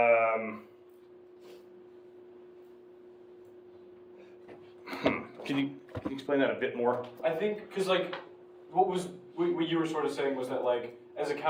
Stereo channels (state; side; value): identical; both; correlation 1.00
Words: Can you explain that a bit more? I think, because like, what you were sort of saying was that like, as a